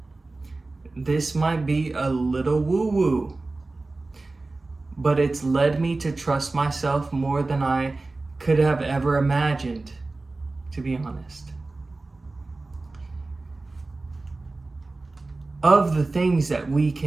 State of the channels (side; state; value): left; quieter; 3.3 dB